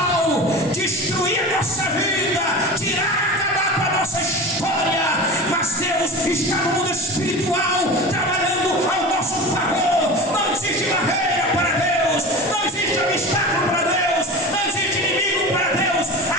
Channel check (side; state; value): both; normal; correlation 0.32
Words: destruir a nossa vida, acabar com a nossa história. Mas Deus está no mundo espiritual, trabalhando ao nosso favor. Não existe barreira para Deus, não existe obstáculo para Deus, não existe inimigo para Deus. A